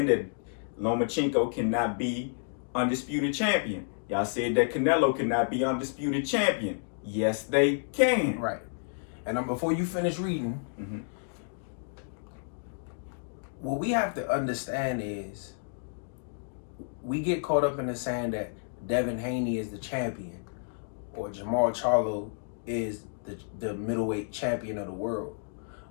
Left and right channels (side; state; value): right; silent; digital silence